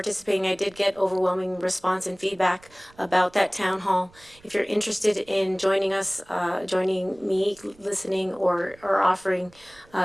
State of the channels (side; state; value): right; noise; rumble, 27 dB below the sound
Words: I did get overwhelming response and feedback about that town hall. If you're interested in joining us, joining me, listening, or offering